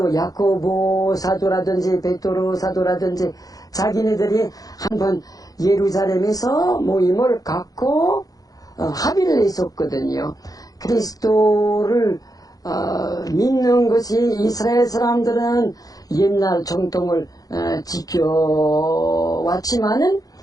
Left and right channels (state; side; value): late; right; 0.18 ms